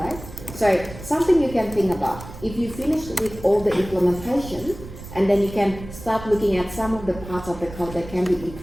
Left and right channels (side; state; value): right; noise; rumble, 14 dB below the sound